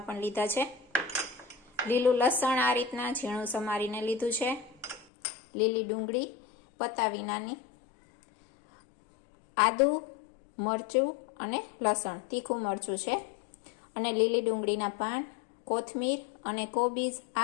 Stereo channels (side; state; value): right; drops out; at 5.1 s